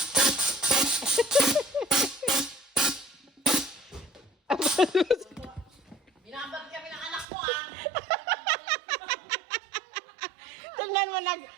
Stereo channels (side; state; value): left; drops out; at 7.2 s